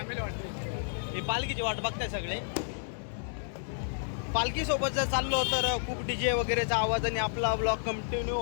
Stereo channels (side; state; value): right; silent; digital silence